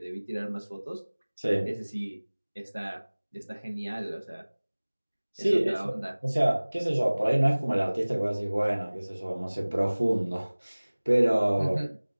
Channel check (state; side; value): inverted; both; correlation -1.00